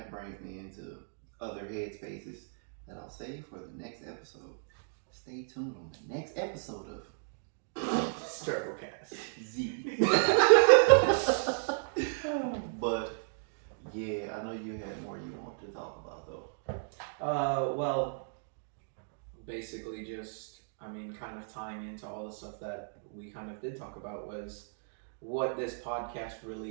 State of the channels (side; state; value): left; silent; digital silence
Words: brings me into other headspaces that I'll save for the next episode. Stay tuned on the next episode of Strugglecast Z. But yeah, I know you had more you wanted to talk about though. Well, basically just, I mean, kind of tying into all the stuff that we kind of did talk about was what this podcast